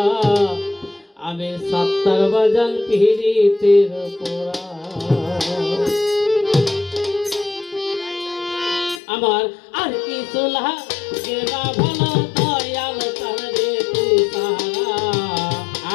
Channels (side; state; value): right; drops out; at 9.0 s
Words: আমি সত্তর বাজান পিরিতের পোড়া আমার আর কিছু গেনা ভালো দয়াল চাঁদরে তুই সারা